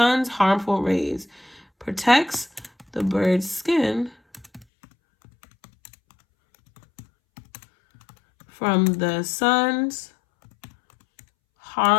harmful rays. Protects the bird's skin from the sun's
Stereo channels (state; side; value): drops out; right; at 4.7 s